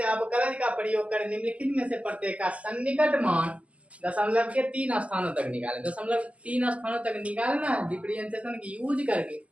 अवकलज का प्रयोग कर निम्नलिखित में से प्रत्येक का सन्निकट मान दशमलव के 3 स्थानों तक निकाले। दशमलव 3 स्थानों तक निकालना है डिफरेंशिएशन की यूज करके,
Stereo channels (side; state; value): left; late; 0.066 ms